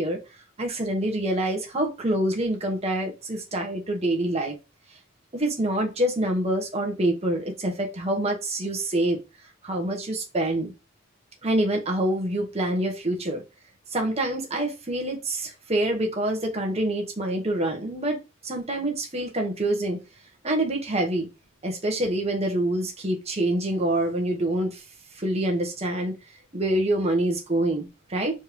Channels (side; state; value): both; normal; correlation 0.53